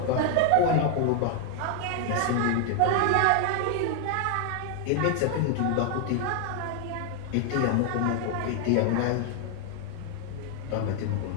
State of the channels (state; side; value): different; both; correlation 0.00